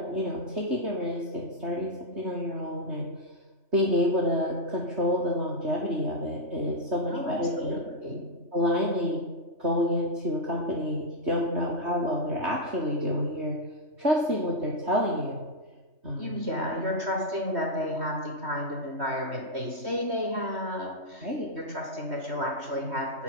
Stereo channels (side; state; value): left; late; 3.1 ms